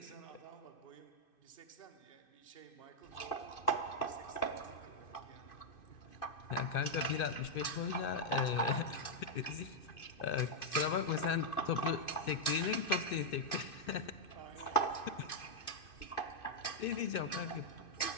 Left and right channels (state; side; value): late; right; 2.5 ms